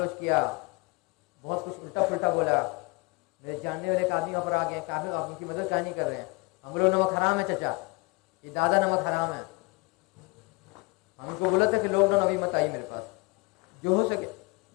کیا, بہت کچھ الٹا پلٹا بولا. میرے جاننے والے ایک آدمی پر آ گئے, کافی آپ ان کی مدد کیا نہیں کر رہے ہیں, ہم لوگ نمک حرام ہے چچا, یہ دادا نمک حرام ہے. ہم ان کو بولا تھا کہ لاک ڈاؤن ابھی مت آئیے میرے پاس, جو ہو سکے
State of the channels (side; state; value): right; quieter; 27.4 dB